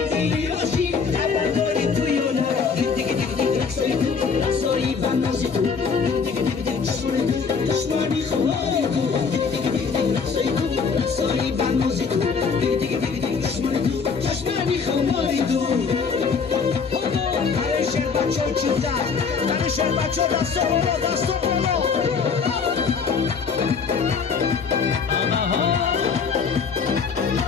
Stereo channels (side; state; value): right; quieter; 5.6 dB